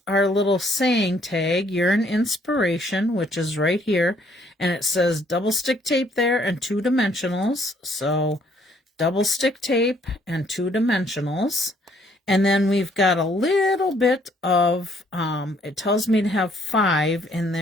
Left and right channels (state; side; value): normal; both; correlation 0.65